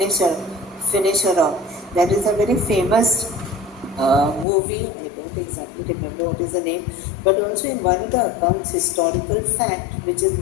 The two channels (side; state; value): right; drops out; at 4.5 s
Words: her off. That is a very famous movie. I don't exactly remember what is the name, but also in one of the accounts, historical fact which is